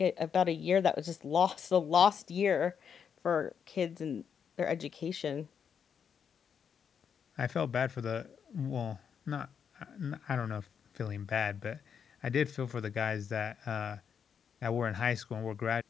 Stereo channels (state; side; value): quieter; right; 7.3 dB